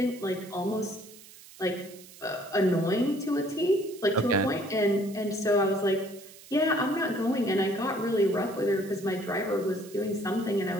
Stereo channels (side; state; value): right; noise; hiss, 20 dB below the sound